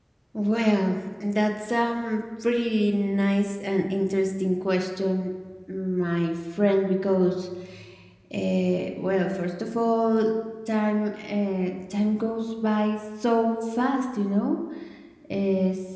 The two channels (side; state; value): both; identical; correlation 1.00